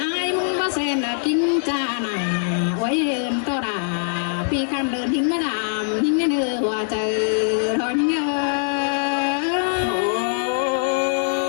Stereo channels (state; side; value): silent; right; digital silence